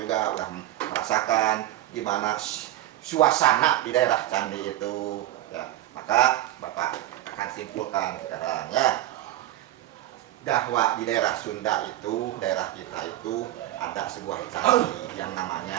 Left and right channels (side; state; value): left; quieter; 14.5 dB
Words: udah merasakan gimana suasana di daerah candi itu ya. Maka Bapak akan simpulkan sekarang ya, bahwa di daerah Sunda itu, daerah kita itu ada sebuah candi yang